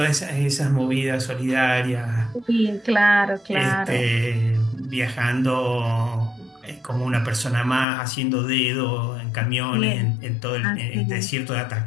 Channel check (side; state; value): right; drops out; at 7.9 s